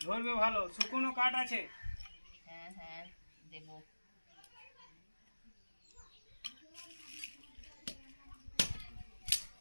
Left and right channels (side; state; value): both; inverted; correlation -1.00